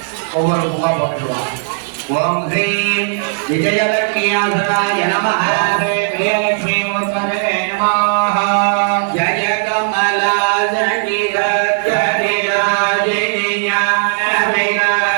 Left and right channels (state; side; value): silent; left; digital silence